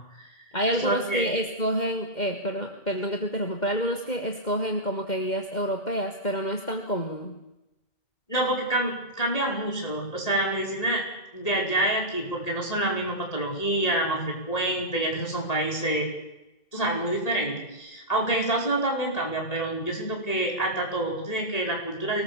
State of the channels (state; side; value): late; right; 1.9 ms